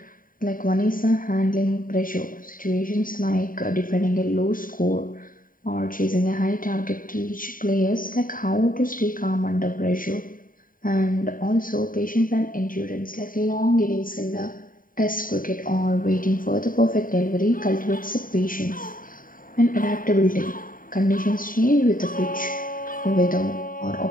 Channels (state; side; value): late; right; 0.40 ms